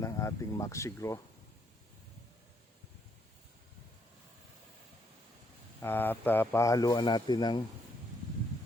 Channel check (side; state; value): both; normal; correlation 0.73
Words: ating Maxigro at pahaluan natin ng